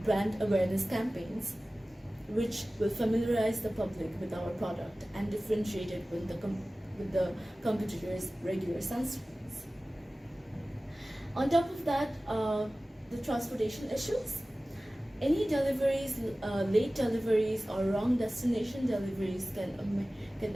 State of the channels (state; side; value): normal; both; correlation 0.97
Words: brand awareness campaigns which will familiarize the public with our product and differentiate it with the competitors' regular sunscreens. On top of that, the transportation issues. Any deliveries, late deliveries or wrong destination deliveries can